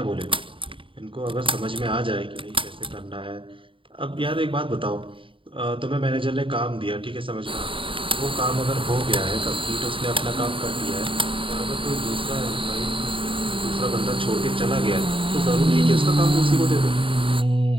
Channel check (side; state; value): left; late; 0.25 ms